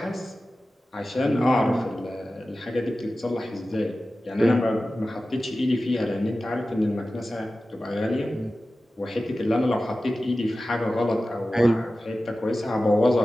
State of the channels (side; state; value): both; normal; correlation 0.95